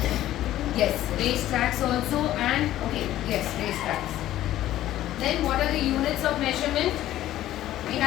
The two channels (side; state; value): right; quieter; 13.7 dB